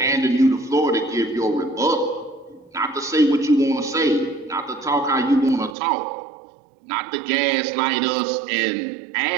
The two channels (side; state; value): left; drops out; at 5.8 s